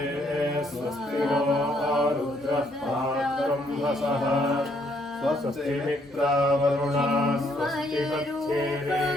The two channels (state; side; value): normal; both; correlation 0.70